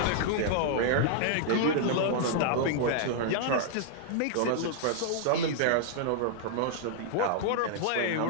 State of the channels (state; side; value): different; both; correlation -0.01